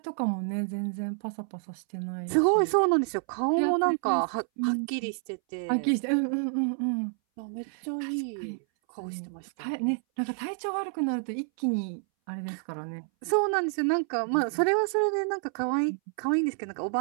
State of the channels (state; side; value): silent; left; 59 dB below the other